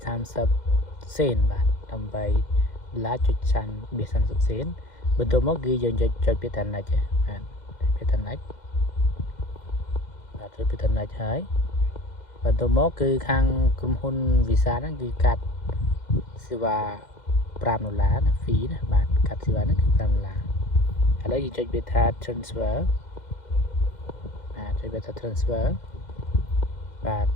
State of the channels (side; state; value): right; late; 2.1 ms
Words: សេនបាទ$18.30 សេនបន្ទាប់មកគឺយើងចុចពាក្យថា next បាទពាក្យថា next បាទចុចពាក្យថា next ហើយបន្ទាប់មកគឺខាងក្រុមហ៊ុន Visa ហ្នឹងគឺកាត់សេវា$5ណា fee ណាបាទកាត់សេវាហ្នឹងគឺ$5ឥឡូវយើងចុចពាក្យថា transfer បាទចុចពាក្យថា transfer បាទឥ